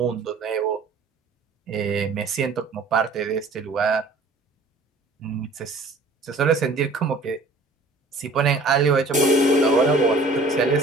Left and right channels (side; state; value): left; quieter; 3.2 dB